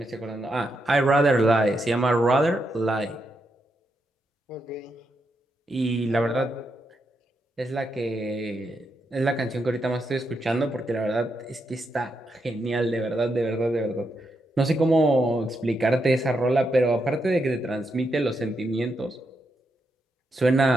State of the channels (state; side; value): normal; both; correlation 0.82